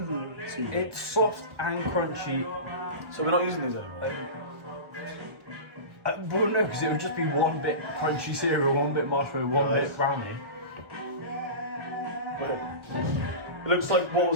Like, It's soft and crunchy. so we're not using these anymore? Well, no, because it would just be one bit crunchy cereal, one bit marshmallow, one bit brownie. Wait. It looks like what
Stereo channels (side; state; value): left; late; 1.4 ms